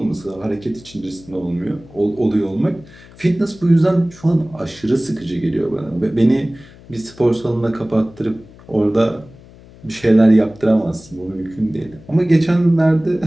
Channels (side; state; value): left; noise; hum, 22 dB below the sound